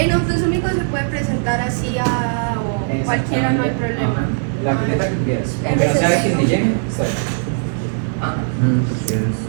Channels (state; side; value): silent; left; digital silence